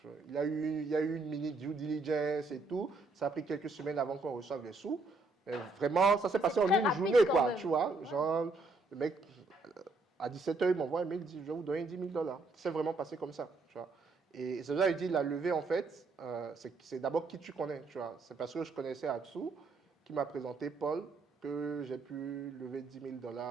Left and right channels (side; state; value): left; quieter; 3.4 dB